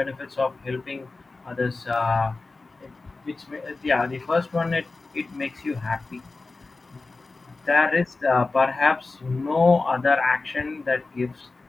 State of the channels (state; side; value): quieter; right; 3.6 dB